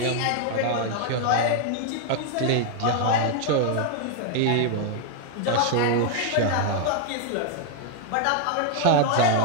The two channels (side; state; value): both; different; correlation 0.00